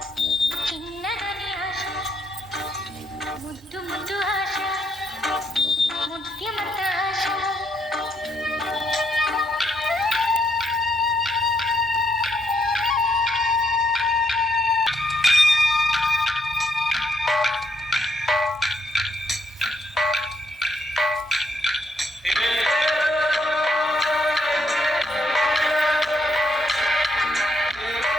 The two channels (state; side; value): normal; both; correlation 0.75